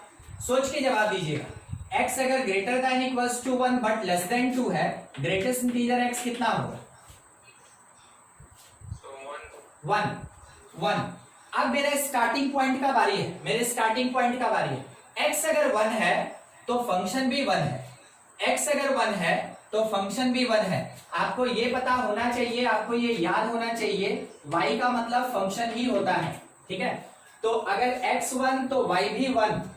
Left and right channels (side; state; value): both; identical; correlation 1.00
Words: सोच के जवाब दीजिएगा। x अगर greater than equals to 1 but less than 2 है, ग्रेटेस्ट इंटीजर x कितना होगा? 1। अब मेरे स्टार्टिंग पॉइंट का बारी है, x अगर 1 है तो फंक्शन भी 1 है, x अगर 1 है तो फंक्शन भी 1 है। आपको ये पता होना चाहिए, आपको ये याद होना चाहिए, y का मतलब फंक्शन ही होता है। ठीक है, तो अगर x 1 तो y भी 1,